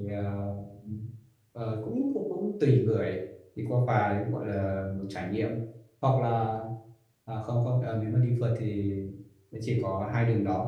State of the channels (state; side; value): identical; both; correlation 1.00